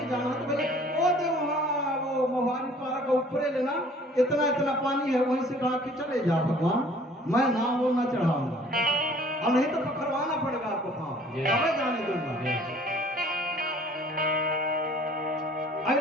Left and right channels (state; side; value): normal; both; correlation 0.53